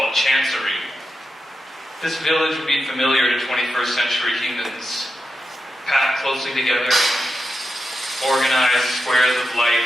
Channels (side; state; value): both; normal; correlation 0.88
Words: Chancery. This village would be familiar to 21st century humans, packed closely together, organized squares of